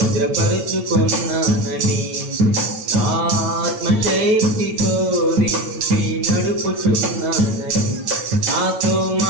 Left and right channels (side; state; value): left; late; 9.4 ms